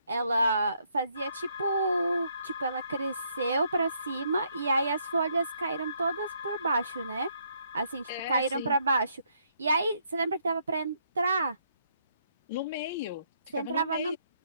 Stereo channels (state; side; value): inverted; both; correlation -0.72